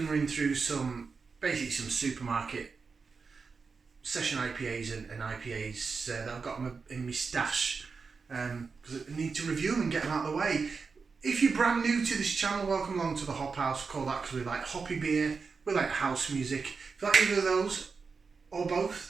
running through some supermarket session IPAs and IPAs that I've got in my stash because I need to review them and get them out of the way. If you're brand new to this channel, welcome along to the Hop House. We call that because we like hoppy beer, we like house music. If you like either of those or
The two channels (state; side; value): quieter; left; 4.9 dB